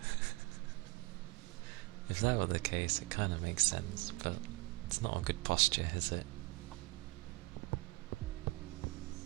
If that were the case, it kind of makes sense, but it's not a good posture, is it?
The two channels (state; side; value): quieter; left; 24.1 dB